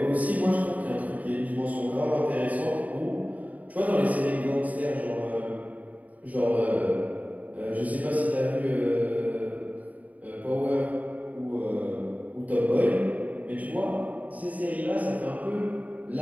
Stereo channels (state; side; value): late; left; 0.072 ms